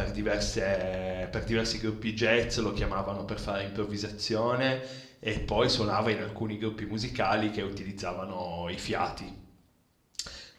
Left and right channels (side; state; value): both; identical; correlation 1.00